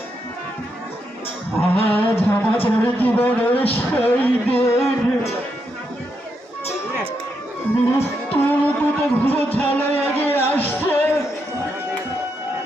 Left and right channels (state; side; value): normal; both; correlation 0.81